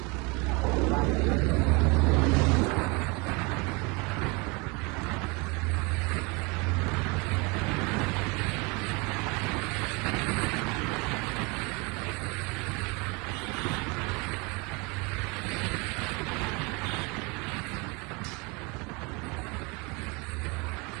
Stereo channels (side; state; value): left; quieter; 27.6 dB